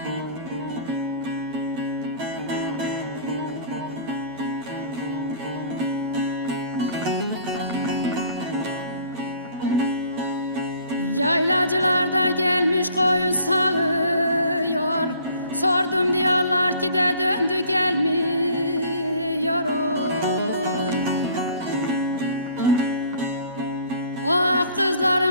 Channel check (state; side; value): inverted; both; correlation -0.54